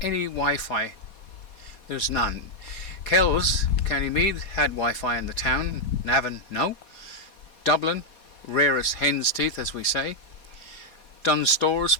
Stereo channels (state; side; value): late; right; 4.2 ms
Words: any Wi-Fi. There's none. Kells, County Meath, had Wi-Fi in the town. Navan, no. Dublin, rarest hen's teeth, as we say. Dunnes Stores,